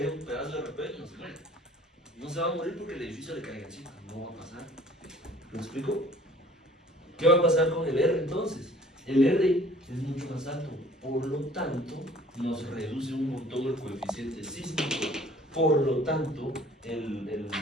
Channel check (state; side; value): normal; both; correlation 0.53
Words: un pedazo de repente, no se muere. No se va a morir porque el edificio le caiga encima, no va a pasar. ¿Me explico? ¿Qué va a pasar con el R entonces? El R es mucho más alto, por lo tanto, nos reduce un montón el coeficiente sísmico. Por lo tanto, el